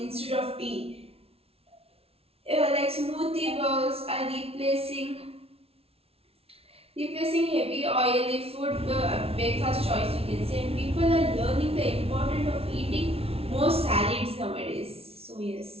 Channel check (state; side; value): late; left; 0.29 ms